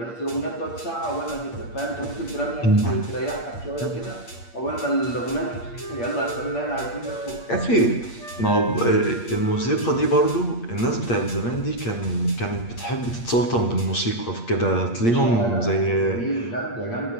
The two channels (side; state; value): right; late; 8.6 ms